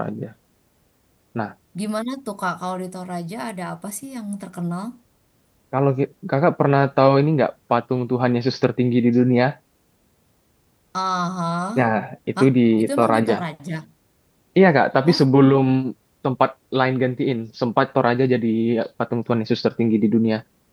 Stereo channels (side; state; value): both; identical; correlation 1.00